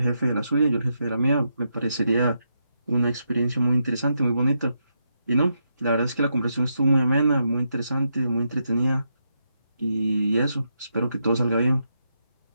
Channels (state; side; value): inverted; both; correlation -0.82